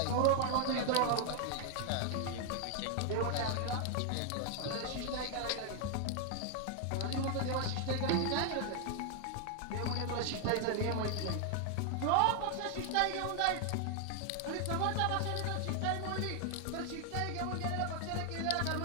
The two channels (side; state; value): both; different; correlation 0.00